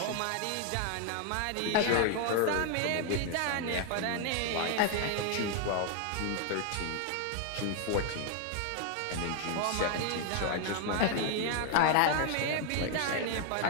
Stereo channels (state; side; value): different; both; correlation 0.00